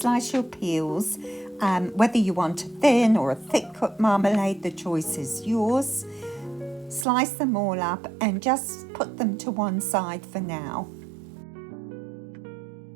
your peels. Whether you want a thin or a thick cut marmalade, the choice is yours. Slice them all up and just put them to one side for now.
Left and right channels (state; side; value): drops out; left; at 7.1 s